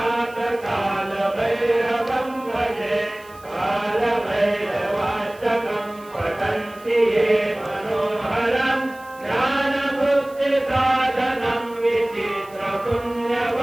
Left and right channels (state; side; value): noise; right; hiss, 25 dB below the sound